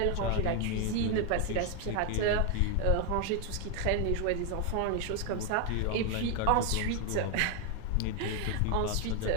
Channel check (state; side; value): different; both; correlation 0.01